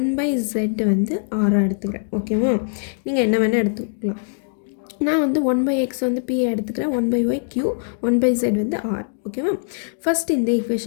by z வந்து r-ஆக எடுத்துக்கிறேன். ஓகேவா, நீங்கள் என்ன வேணால் எடுத்துக்கலாம். நான் வந்து 1 by x வந்து p எடுத்துக்கிறேன், 1 by y q, 1 by z வந்து r. ஓகேவா, ஃபஸ்ட் இந்த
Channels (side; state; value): right; silent; digital silence